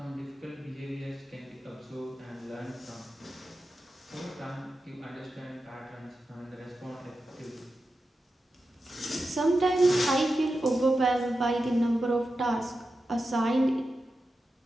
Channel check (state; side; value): normal; both; correlation 0.91